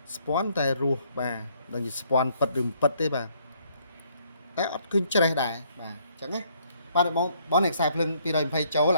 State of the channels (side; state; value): both; inverted; correlation -0.67